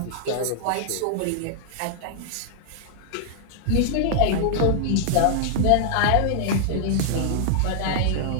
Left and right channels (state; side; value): different; both; correlation -0.01